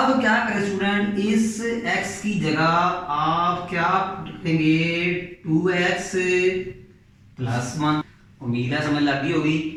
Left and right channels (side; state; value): both; identical; correlation 1.00